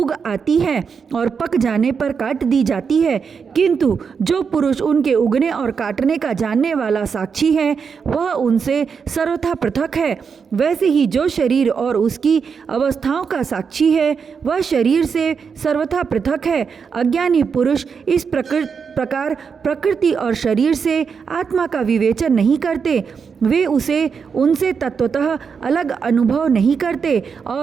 आती है और पक जाने पर काट दी जाती है, किंतु जो पुरुष उनके उगने और काटने का जानने वाला साक्षी है, वह उनसे सर्वथा पृथक है। वैसे ही जो शरीर और उसकी अवस्थाओं का साक्षी है, वह शरीर से सर्वथा पृथक है। अज्ञानी पुरुष इस प्रकार प्रकृति और शरीर से आत्मा का विवेचन नहीं करते। वे उनसे तत्वतः अलग अनुभव नहीं करते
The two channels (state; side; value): quieter; left; 6.1 dB